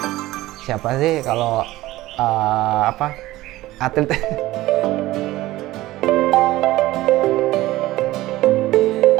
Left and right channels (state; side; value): quieter; left; 17.2 dB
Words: Siapa sih kalau atlet